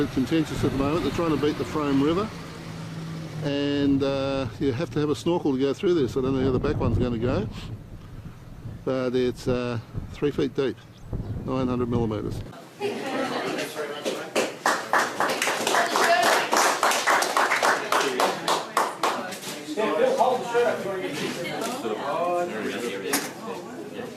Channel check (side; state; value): both; identical; correlation 1.00